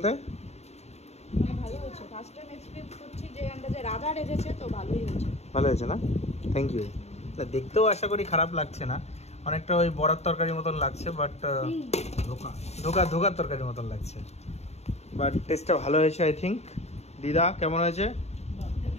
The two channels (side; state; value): right; late; 0.31 ms